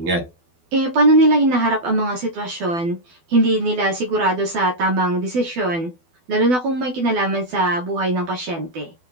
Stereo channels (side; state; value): left; late; 12 ms